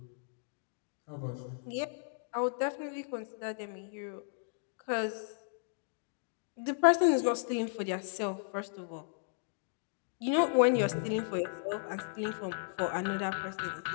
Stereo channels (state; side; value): silent; right; digital silence